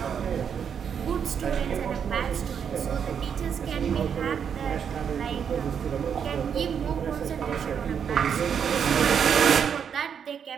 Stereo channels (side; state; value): left; quieter; 7.5 dB